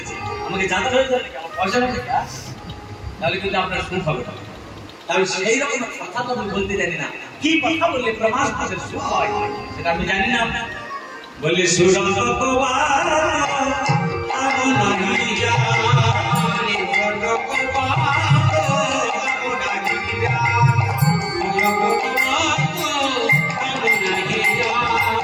আমাকে জানতে হয়ে যাবে আমার পয়সা নেই, তাহলে কিন্তু আপনার সুখ হবে। তাহলে সেই রকম কথা তো আমি বলতে জানি না, কি কথা বললে প্রমাণ পাশে সুখ হয় সেটা আমি জানি না। বললে সুরন্ত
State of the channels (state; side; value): identical; both; correlation 1.00